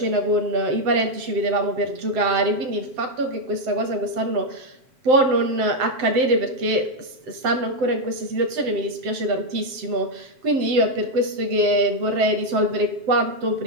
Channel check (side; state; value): left; late; 7.7 ms